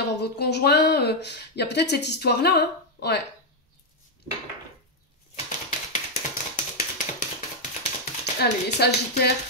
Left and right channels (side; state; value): both; normal; correlation 0.00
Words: votre conjoint. Il y a peut-être cette histoire-là, hein. Ouais. Allez, Sagittaire.